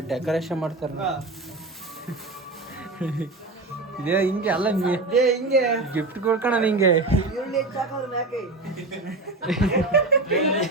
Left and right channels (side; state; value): left; quieter; 3.1 dB